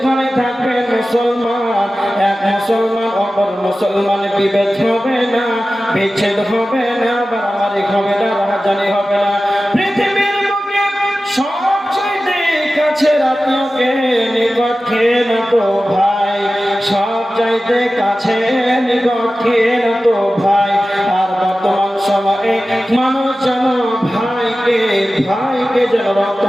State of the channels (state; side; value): normal; both; correlation 0.95